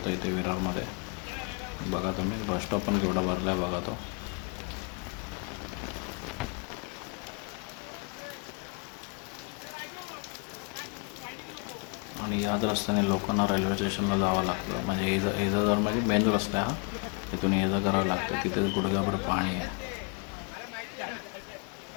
इथे विरारमध्ये. बघा तुम्ही बस स्टॉप पण केवढा भरला आहे बघा तो. आणि याच रस्त्याने लोकांना रेल्वे स्टेशनला जावं लागतं. म्हणजे एजागर म्हणजे मेन रस्ता आहे हा. तिथून ये जा करावं लागतं. तिथे गुडघ्याभर पाणी आहे.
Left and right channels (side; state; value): right; quieter; 34.4 dB